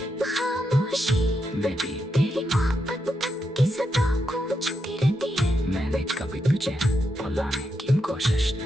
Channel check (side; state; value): both; normal; correlation 0.83